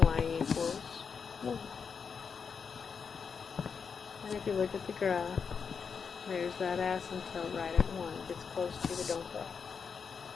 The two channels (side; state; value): right; quieter; 6.1 dB